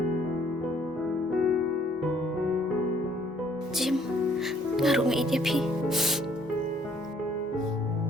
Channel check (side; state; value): both; normal; correlation 0.62